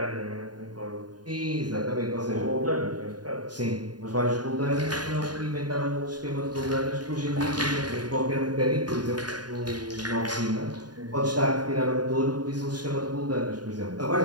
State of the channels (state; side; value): late; left; 0.70 ms